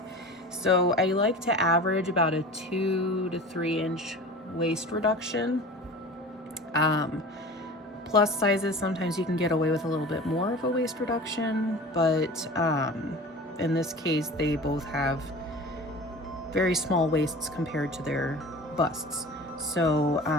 So I like to average about a 2 to 3 inch waist reduction. Plus sizes, sometimes you can get away with a little bit more of a waist reduction, but in this case, they both have very small waists compared to their busts. So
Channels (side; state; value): both; normal; correlation 0.37